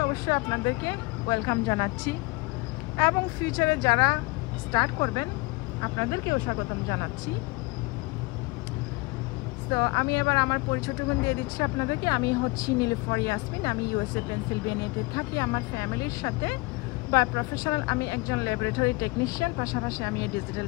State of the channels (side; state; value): right; quieter; 25.4 dB